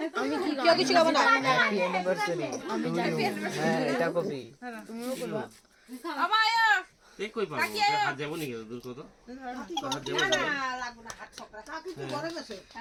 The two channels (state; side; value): identical; both; correlation 1.00